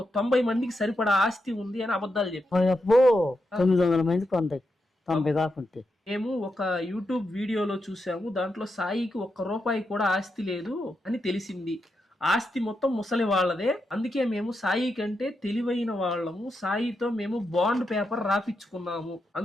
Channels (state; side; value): normal; both; correlation 0.85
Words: 90 మందికి సరిపడా ఆస్తి ఉంది అని అబద్ధాలు చెప్పారు. 900 మందికి 90 కాకుంటే. మేము ఒక యూట్యూబ్ వీడియోలో చూసాము, దాంట్లో సాయికి 1 రూపాయి కూడా ఆస్తి లేదు అని తెలిసింది. ఆస్తి మొత్తం ముసలి వాళ్ళదే. అందుకే మేము సాయి కంటే తెలివైన వాళ్ళము. సాయితో మేము బాండ్ పేపర్ రాపించుకున్నాము.